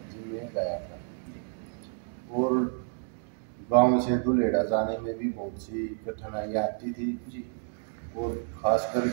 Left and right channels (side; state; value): left; silent; 58 dB below the other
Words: जिम में गया था। और गांव से दुलेड़ा जाने में भी बहुत सी कठिनाइयाँ आती थी और खास